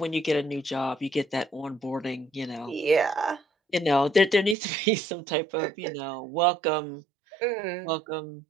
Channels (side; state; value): left; drops out; at 4.5 s